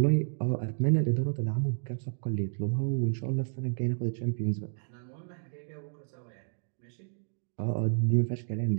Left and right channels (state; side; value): silent; left; digital silence